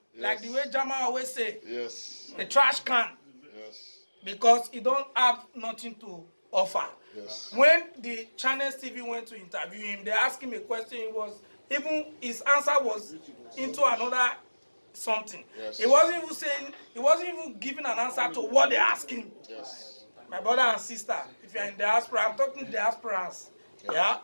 like the way Jama always say. Yes. A trash can. Yes. Because he don't have nothing to offer. Yes. When the Channels TV went to interview him, they asked him a question. His answer was into another something. Yes. He wasn't even giving an answer to what they asked him. Yes. My brother and sister, if you're in diaspora, I'm talking to diasporans. Yeah?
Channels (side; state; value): both; inverted; correlation -1.00